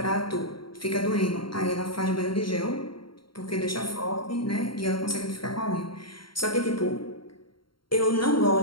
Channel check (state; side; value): late; right; 0.73 ms